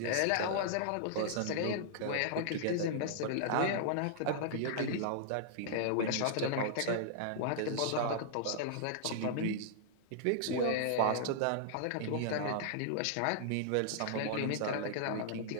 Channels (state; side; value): different; both; correlation -0.01